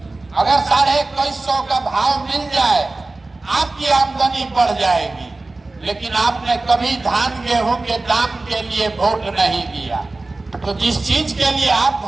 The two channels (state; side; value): quieter; left; 3.2 dB